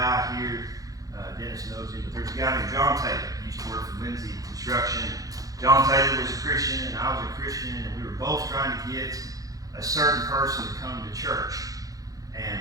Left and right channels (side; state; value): left; late; 0.17 ms